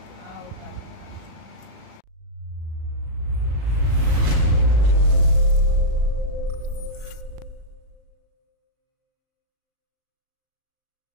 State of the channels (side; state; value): left; late; 37 ms